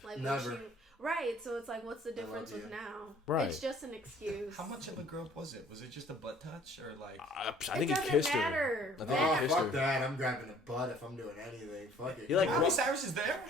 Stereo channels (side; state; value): both; normal; correlation 0.55